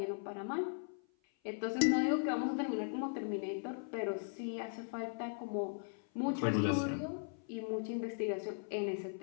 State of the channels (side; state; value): right; silent; 52 dB below the other